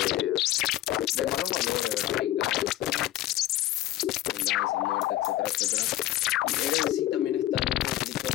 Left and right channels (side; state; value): right; quieter; 14.6 dB